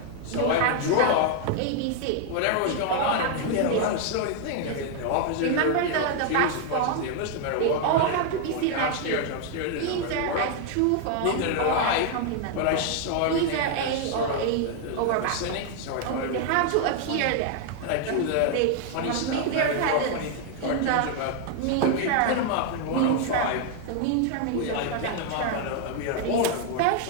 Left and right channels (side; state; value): both; different; correlation 0.00